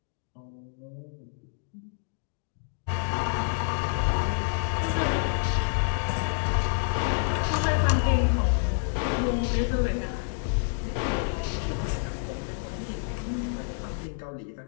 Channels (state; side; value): silent; right; digital silence